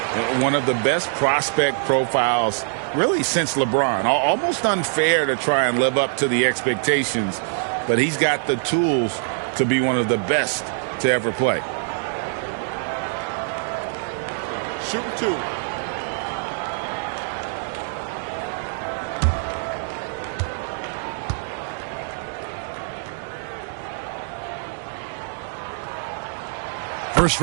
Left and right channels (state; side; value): silent; left; digital silence